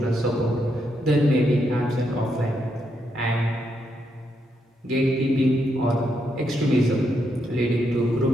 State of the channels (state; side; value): normal; both; correlation 0.79